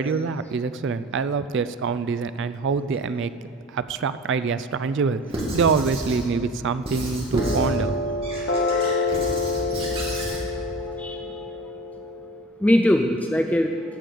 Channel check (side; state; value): both; normal; correlation 0.42